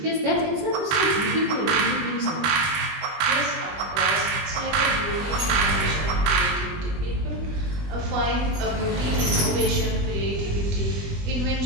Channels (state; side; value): late; left; 20 ms